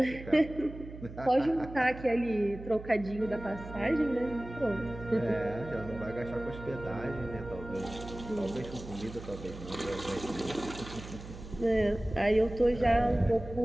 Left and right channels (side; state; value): right; noise; hum, 13 dB below the sound